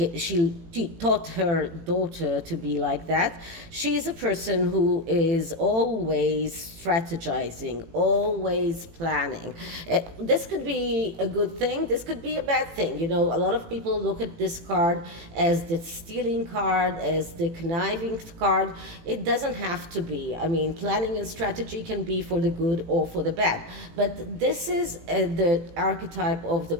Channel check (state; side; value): late; left; 18 ms